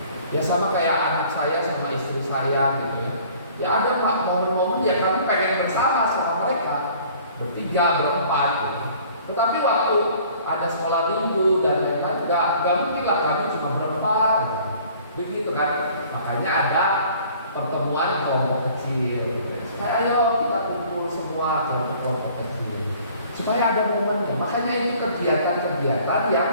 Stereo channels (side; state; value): both; inverted; correlation -0.53